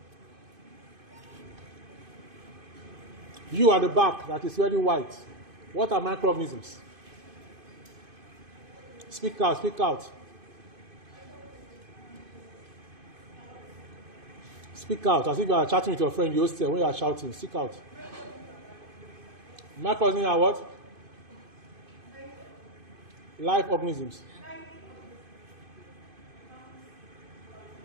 You at the back that is very white. What are microorganisms? Speak out, speak out. Speak out, as if you are chatting with your friend, you hostel, when you are shouting, speak out. Microorganisms are what? Live organisms.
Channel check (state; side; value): late; left; 2.5 ms